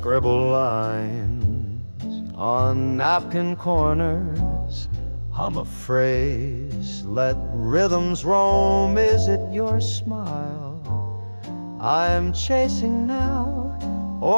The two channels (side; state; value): both; inverted; correlation -1.00